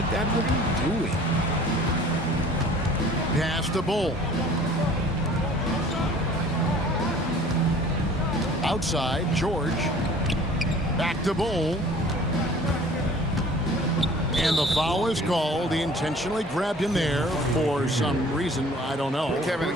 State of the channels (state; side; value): normal; both; correlation 0.49